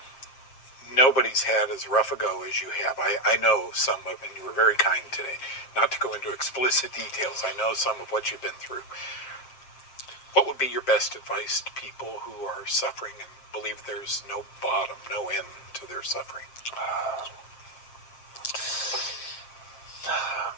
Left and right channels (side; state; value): right; late; 7.6 ms